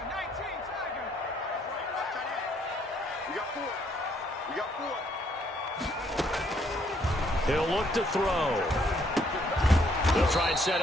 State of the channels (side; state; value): both; normal; correlation 0.68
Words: He'll look to throw. They'll try and set